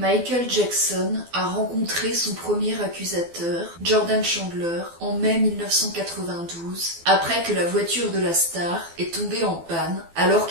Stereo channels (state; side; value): late; left; 12 ms